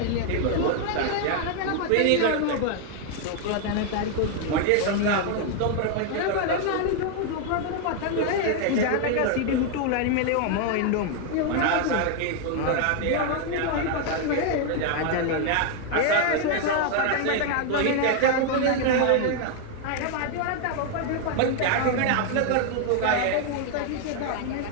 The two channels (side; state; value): both; different; correlation 0.00